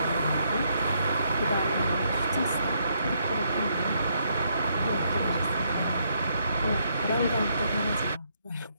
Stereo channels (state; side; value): inverted; both; correlation -0.74